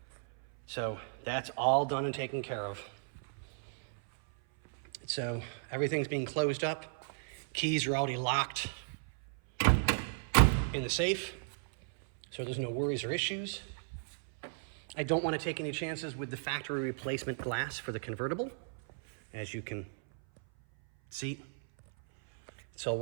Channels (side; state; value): left; silent; 55 dB below the other